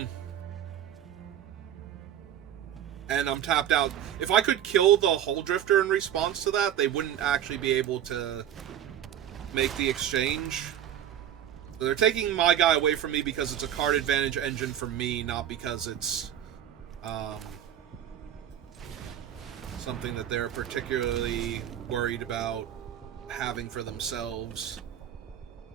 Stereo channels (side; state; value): left; quieter; 10.4 dB